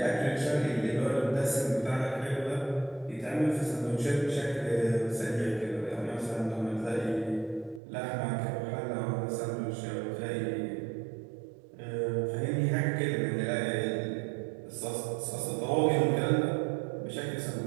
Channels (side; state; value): left; drops out; at 7.8 s